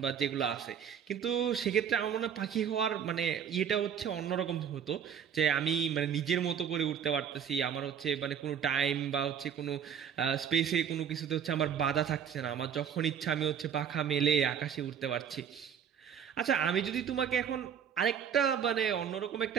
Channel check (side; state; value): left; quieter; 8.1 dB